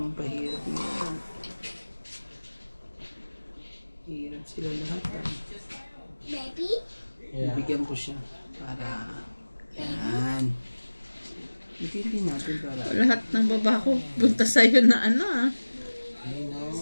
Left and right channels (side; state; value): both; inverted; correlation -1.00